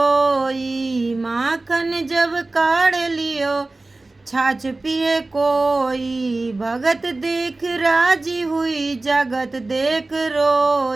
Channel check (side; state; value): left; quieter; 3.1 dB